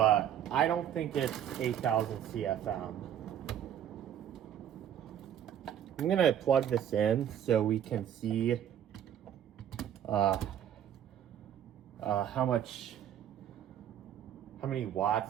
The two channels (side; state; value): left; quieter; 10.0 dB